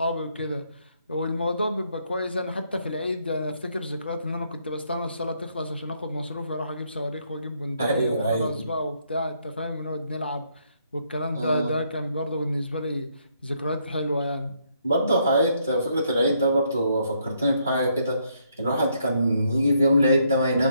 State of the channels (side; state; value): both; inverted; correlation -0.73